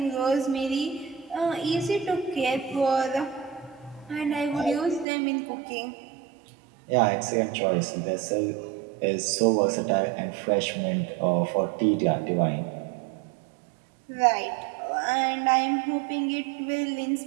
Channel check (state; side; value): drops out; left; at 5.1 s